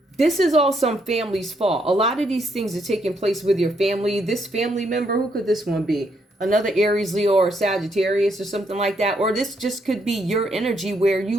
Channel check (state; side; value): normal; both; correlation 0.75